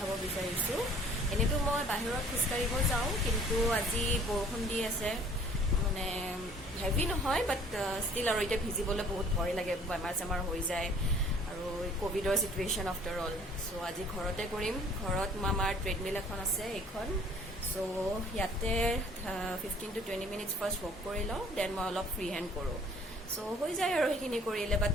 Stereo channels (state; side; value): normal; both; correlation 0.55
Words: bisarisu. Ene to moi bahirot khuskaribo jao kintu aji borokhon di ase mane heavy no hoy but still aro ite bhijibole bahut bhoy lage bemar samar hoi jay aru covid or situation after all. So aji ghorote korim ghorot mamar treadmill ekhon ase ekhon. So yate 15 to 20 minutes first walk korilo then moi olop free hand koru. So হৈ যায় আৰু হিনি কৰিলে